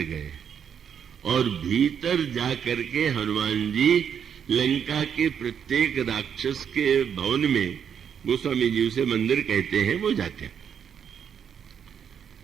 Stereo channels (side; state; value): left; quieter; 7.9 dB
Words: गए और भीतर जा करके हनुमान जी लंका के प्रत्येक राक्षस के भवन में, गोस्वामी जी उसे मंदिर कहते हैं, वो जाते हैं।